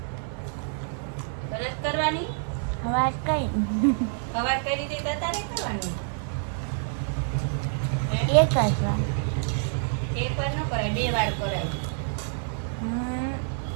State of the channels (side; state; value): left; silent; digital silence